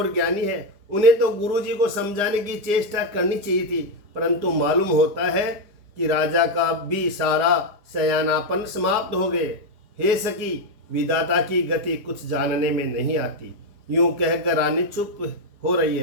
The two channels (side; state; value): left; late; 4.9 ms